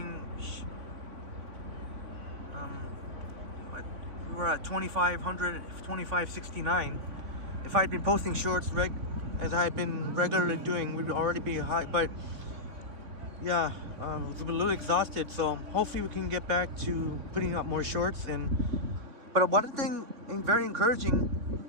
we were at 2569. If I had been posting shorts as I had been regularly doing, we'd already be high. But yeah, I was a little exhausted, so hopefully we can get back to putting up more shorts. But one thing very encouraging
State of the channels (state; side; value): late; left; 3.6 ms